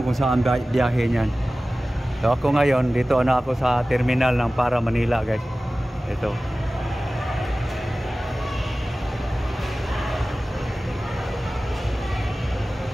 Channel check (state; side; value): normal; both; correlation 0.96